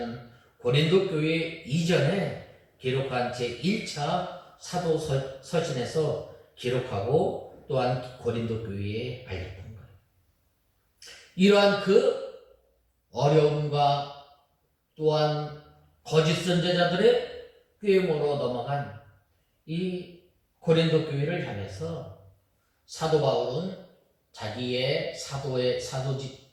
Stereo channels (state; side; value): identical; both; correlation 1.00